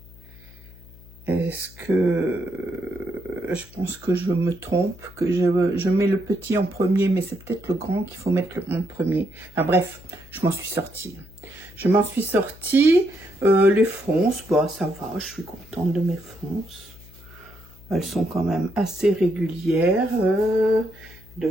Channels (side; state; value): left; noise; hum, 21 dB below the sound